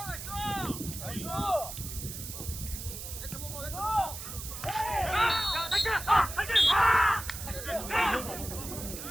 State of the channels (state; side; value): noise; right; hiss, 9 dB below the sound